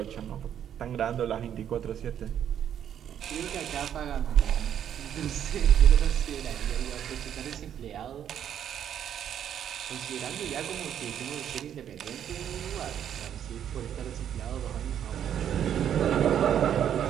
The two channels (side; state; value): left; quieter; 9.6 dB